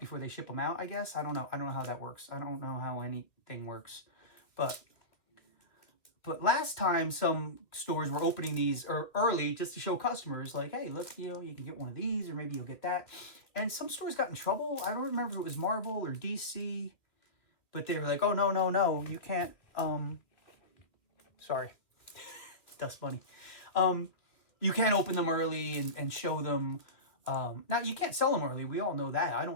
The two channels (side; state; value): right; late; 2.5 ms